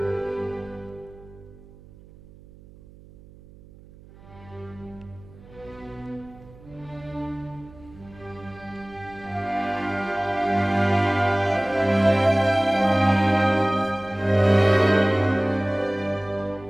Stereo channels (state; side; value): noise; right; hum, 22 dB below the sound